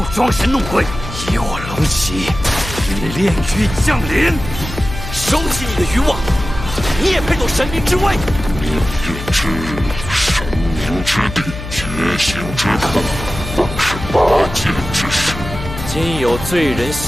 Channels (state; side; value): noise; left; hum, 9 dB below the sound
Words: 装神弄鬼，以我龙旗与炼狱降临。收起你的渔网，你也配斗神明之威？命运之日，神明之地，觉醒之刻，当是8阶之事。今有罪人